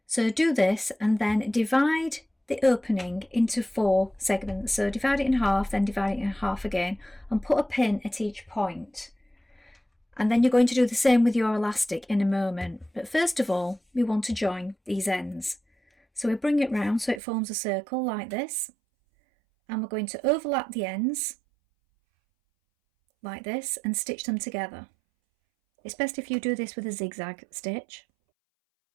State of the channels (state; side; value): drops out; left; at 17.2 s